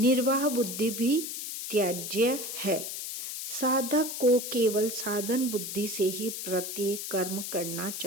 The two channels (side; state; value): left; noise; hiss, 6 dB below the sound